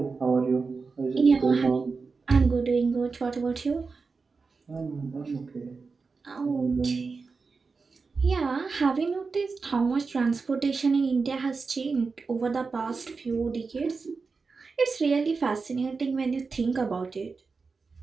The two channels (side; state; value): left; quieter; 4.6 dB